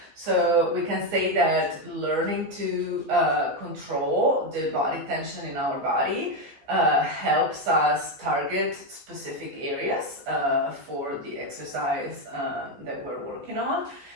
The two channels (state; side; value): late; left; 15 ms